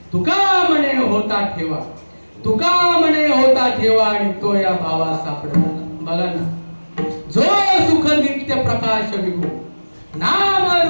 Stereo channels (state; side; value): inverted; both; correlation -1.00